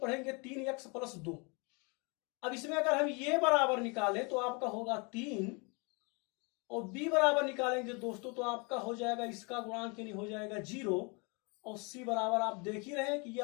3x + 2। अब इसमें अगर हम ये बराबर निकालें तो आपका होगा 3, और b बराबर निकालेंगे दोस्तों तो आपका हो जाएगा इसका गुणांक यानी हो जाएगा 0, और c बराबर आप देख ही रहे हैं कि ये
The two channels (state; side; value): quieter; right; 31.7 dB